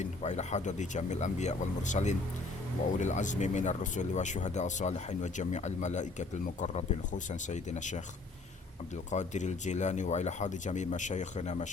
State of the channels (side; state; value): right; quieter; 3.5 dB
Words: wa ila hadrati jamil anbiya wal mursalin wa ulil azmi minar rusuli wa syuhada as-salihin wa jami'al malaikatil muqarrabin khususan sayyidina Syekh Abdul Qadir Al-Jilani wa ila hadhi jami' masyayikhina